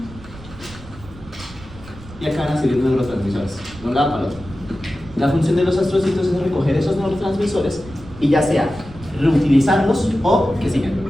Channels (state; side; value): noise; right; rumble, 18 dB below the sound